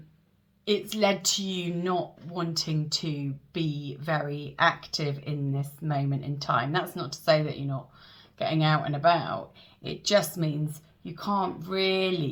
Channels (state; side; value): identical; both; correlation 1.00